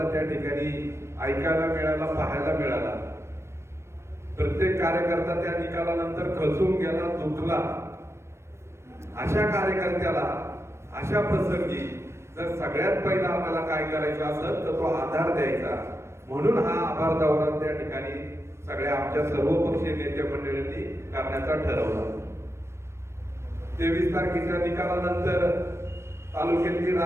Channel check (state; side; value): late; left; 0.13 ms